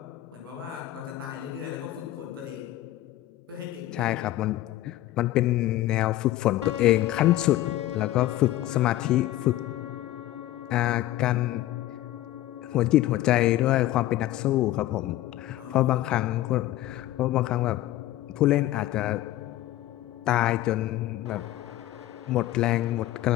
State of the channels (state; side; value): quieter; right; 15.1 dB